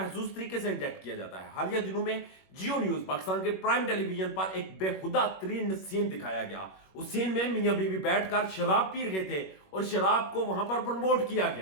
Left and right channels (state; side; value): late; right; 21 ms